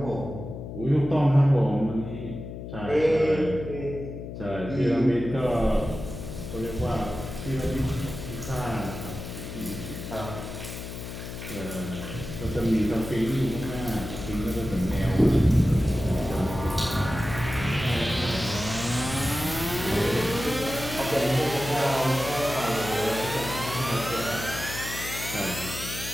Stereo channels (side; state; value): left; noise; hum, 9 dB below the sound